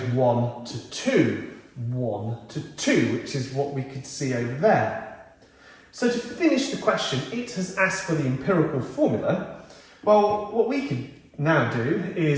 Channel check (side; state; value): both; identical; correlation 1.00